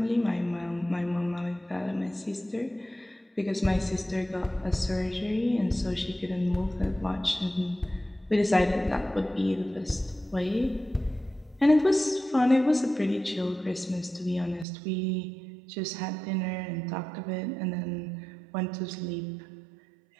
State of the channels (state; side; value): drops out; left; at 14.7 s